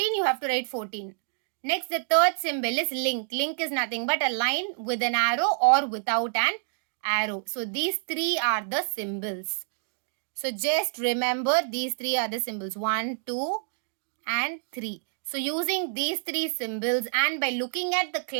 you have to write 14. Next, the third symbol is link. Link is nothing but a line with an arrow or without an arrow. So these three are the symbols. So just remember these three are the symbols. 1, 2 and 3. So using these three symbols and by looking at the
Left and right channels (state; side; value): silent; left; digital silence